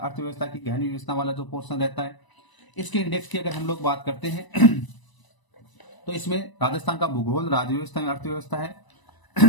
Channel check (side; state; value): right; late; 1.0 ms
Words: की गहन व्यवस्था वाला जो पोर्शन रहता है। इसके इंडेक्स की अगर हम लोग बात करते हैं तो इसमें राजस्थान का भूगोल, राजव्यवस्था एवं अर्थव्यवस्था है।